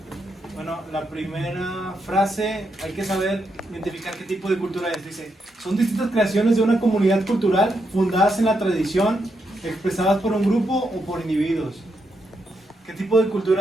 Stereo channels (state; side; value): normal; both; correlation 0.81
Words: Bueno, la primera frase, hay que saber identificar qué tipo de cultura es. Dice, son distintas creaciones de una comunidad cultural fundadas en la tradición, expresadas por un grupo o por individuos. ¿Qué tipo de